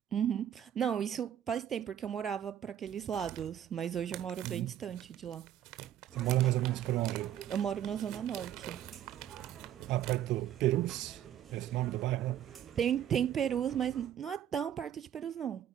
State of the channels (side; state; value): left; quieter; 10.7 dB